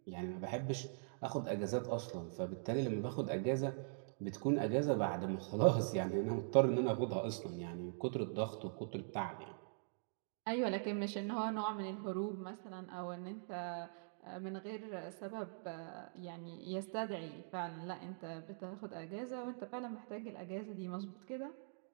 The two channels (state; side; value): silent; left; digital silence